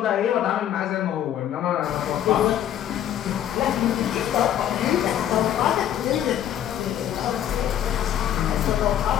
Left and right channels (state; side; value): quieter; right; 10.7 dB